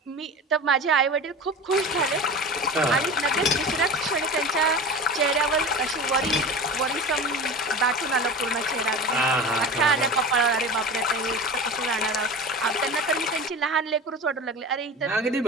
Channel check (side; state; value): both; normal; correlation 0.32